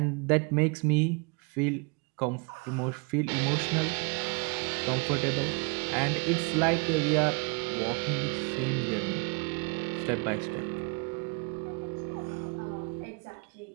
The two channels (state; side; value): quieter; left; 32.2 dB